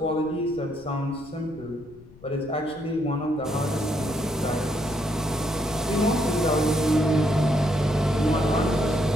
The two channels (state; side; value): noise; left; rumble, 23 dB below the sound